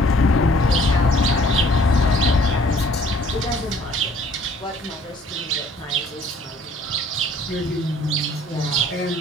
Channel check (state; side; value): normal; both; correlation 0.57